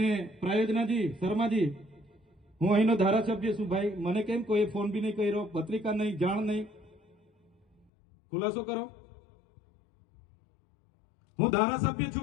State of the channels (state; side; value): drops out; right; at 7.9 s